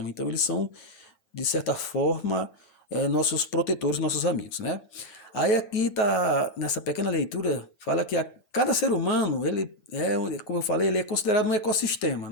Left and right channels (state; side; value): late; right; 8.9 ms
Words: Então, eles são, de certa forma, nossos protetores, nossos amigos, né? Aí aqui tá nessa pequena leitura fala que cada ser humano ele como eu falei, ele é considerado um ecossistema,